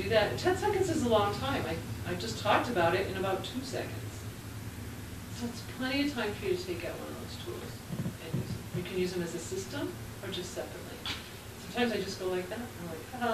that, 10 seconds is a long time. I just talked about it in about 2 seconds. So it's plenty of time for you to take out one of those tools and use them. You can use them as a system or just separately. Sometimes I just go like that. I'm like,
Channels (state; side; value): identical; both; correlation 1.00